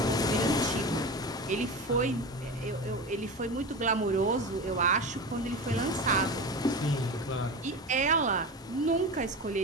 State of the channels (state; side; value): normal; both; correlation 0.26